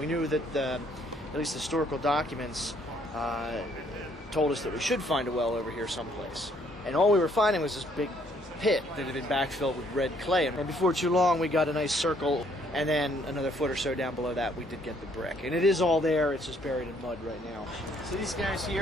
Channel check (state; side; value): normal; both; correlation 0.66